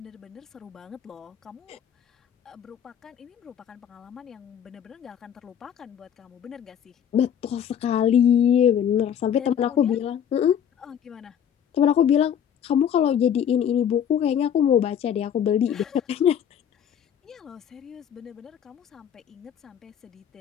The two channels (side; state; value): right; quieter; 8.9 dB